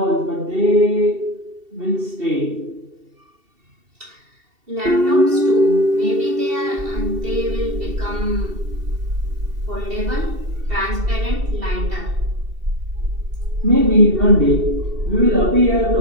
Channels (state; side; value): late; left; 2.7 ms